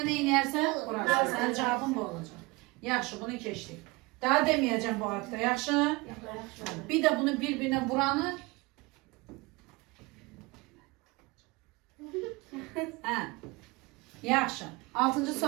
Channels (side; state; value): left; quieter; 24.2 dB